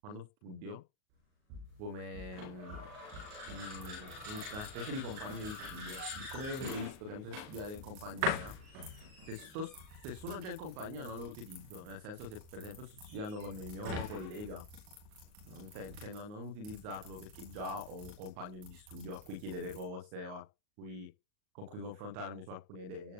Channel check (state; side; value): late; left; 38 ms